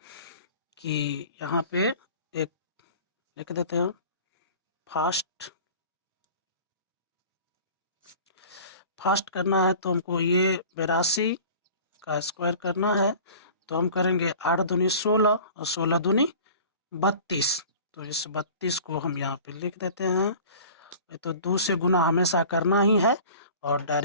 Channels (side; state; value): both; inverted; correlation -0.43